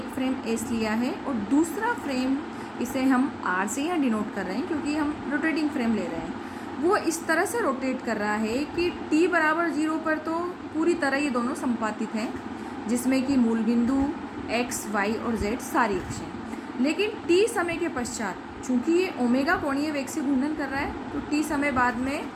फ्रेम एस लिया है और दूसरा फ्रेम इसे हम आर से यहाँ डिनोट कर रहे हैं क्योंकि हम रोटेटिंग फ्रेम ले रहे हैं. वो इस तरह से रोटेट कर रहा है कि t बराबर 0 पर तो पूरी तरह ये दोनों संपातित हैं, जिसमें कि मूल बिंदु x, y और z सारी अक्षें. लेकिन t समय के पश्चात चूँकि ये ओमेगा कोणीय वेग से घूर्णन कर रहा है तो t समय बाद में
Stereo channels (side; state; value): both; identical; correlation 1.00